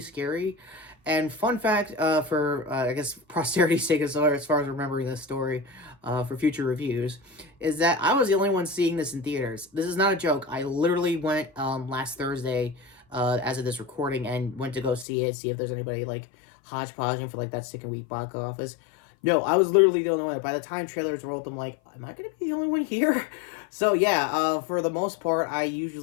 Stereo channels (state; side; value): drops out; right; at 15.1 s